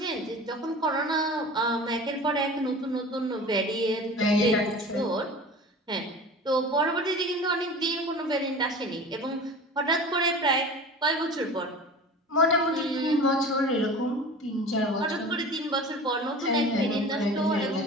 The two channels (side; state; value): both; normal; correlation 0.37